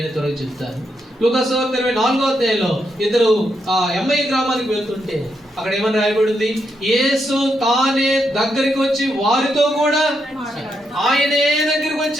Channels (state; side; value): normal; both; correlation 0.81